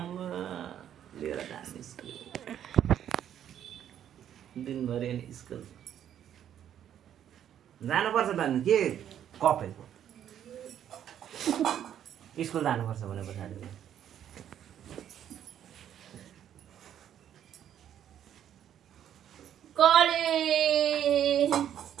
लिएर जाने स्कुल दिनभरि अनि स्कुल जानुपर्छ त अनि के कपेको स्कुल जानुपर्छ भने पछाडि कलेज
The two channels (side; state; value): left; quieter; 10.1 dB